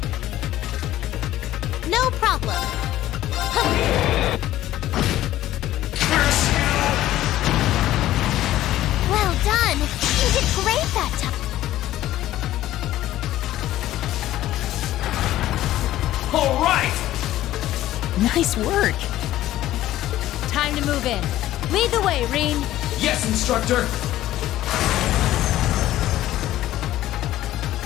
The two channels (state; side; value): quieter; right; 14.2 dB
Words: No problem! Curse you! Well done! You did great that time! All right! Nice work! Time to move in. Lead the way, Reen. Yes, instructor!